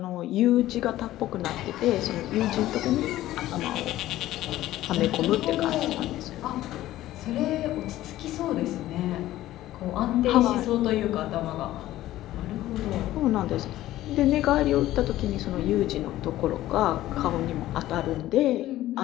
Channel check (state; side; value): quieter; right; 14.8 dB